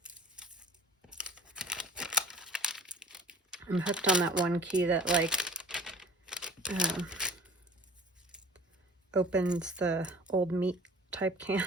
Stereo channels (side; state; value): both; normal; correlation 0.46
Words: I'm hooked on that one key that, like, opens the old meat type